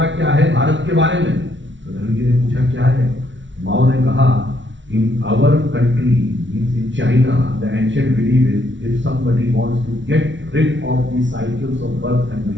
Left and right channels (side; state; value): left; late; 0.55 ms